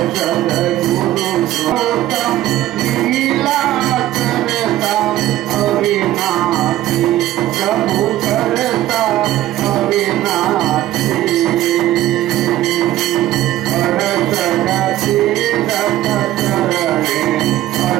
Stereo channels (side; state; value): left; quieter; 14.5 dB